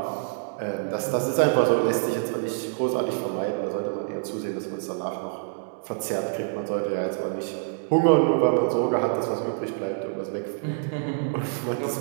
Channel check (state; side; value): silent; left; digital silence